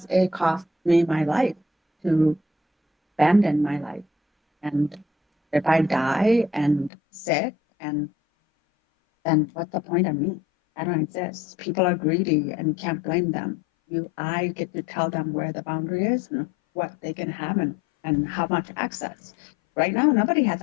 it cost me my life to abandon my life. And if I die and sick, and then what's the point of me? I don't exist. People are greedy, and you can't blame them. I get to tell them where the boundary is and what they can have, and how much access. Right now, nobody has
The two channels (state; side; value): drops out; right; at 6.9 s